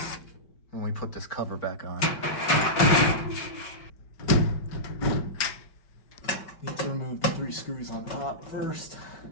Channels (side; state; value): right; late; 5.3 ms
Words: when we put this cover back on. Need to remove the 3 screws on top first.